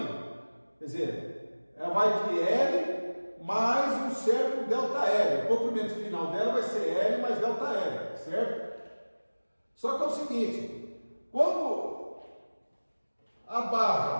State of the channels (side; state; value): both; inverted; correlation -1.00